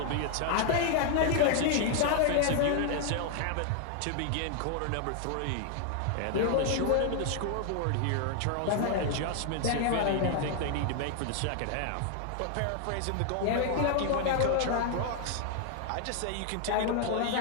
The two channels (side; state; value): both; different; correlation 0.00